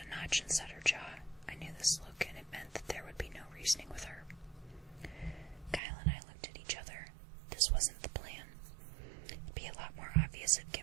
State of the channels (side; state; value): left; drops out; at 5.8 s